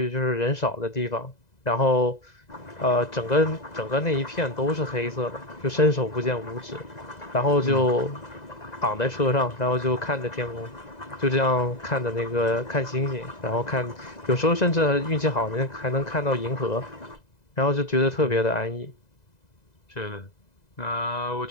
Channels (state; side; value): late; right; 2.0 ms